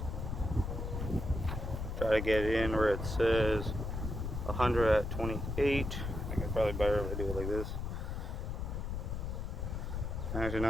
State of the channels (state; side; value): noise; left; rumble, 4 dB below the sound